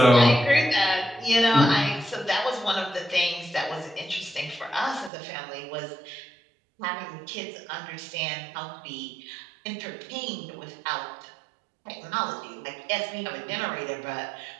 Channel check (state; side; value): drops out; left; at 5.1 s